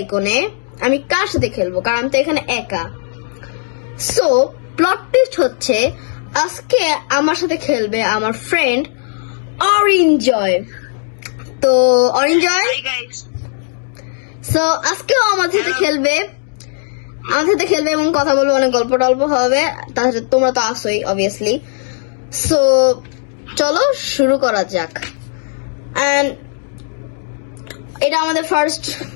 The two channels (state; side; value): silent; right; digital silence